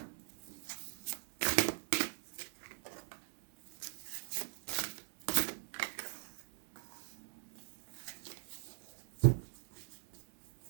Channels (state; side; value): silent; left; digital silence